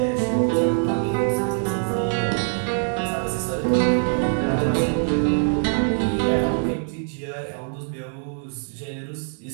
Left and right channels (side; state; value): left; silent; 63 dB below the other